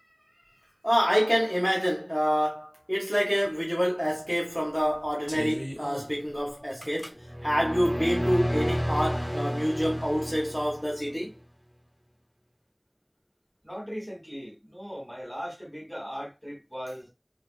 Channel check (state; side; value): identical; both; correlation 1.00